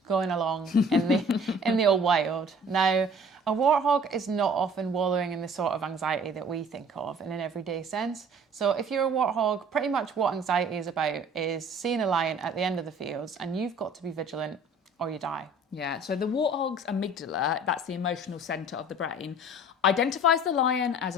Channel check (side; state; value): both; normal; correlation 0.50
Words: going along in the old wild. Now, a warthog is not often wallowing in the sort of anxiety that we think of in an everyday sense. So if you're a warthog, pretty much what anxiety is about is seeing a lion at the end of the fields and you've got to be vigilant or you die. Yeah, so the warthog's amygdala, that's the emotional centre of the brain, identifies the lion as